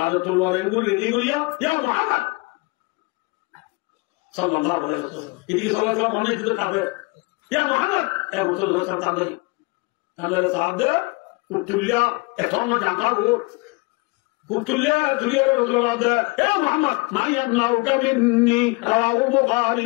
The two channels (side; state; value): right; quieter; 26.8 dB